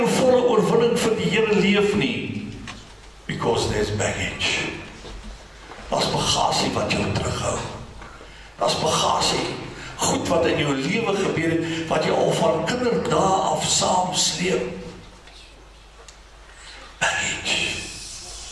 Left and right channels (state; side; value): identical; both; correlation 1.00